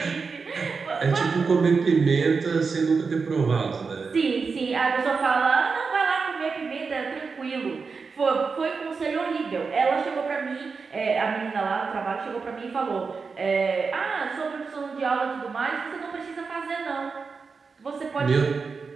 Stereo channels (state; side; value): quieter; left; 4.9 dB